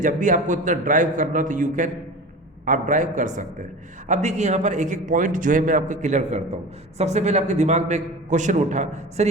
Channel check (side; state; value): both; normal; correlation 0.33